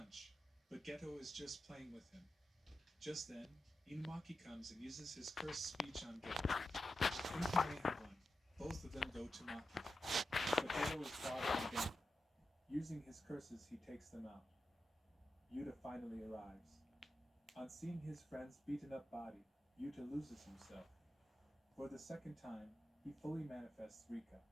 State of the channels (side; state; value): both; normal; correlation 0.90